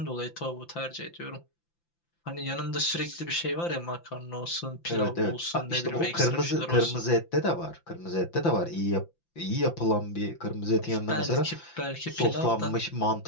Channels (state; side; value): late; right; 5.9 ms